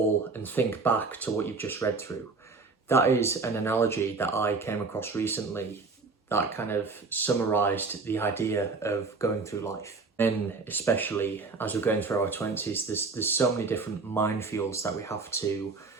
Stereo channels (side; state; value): left; quieter; 4.1 dB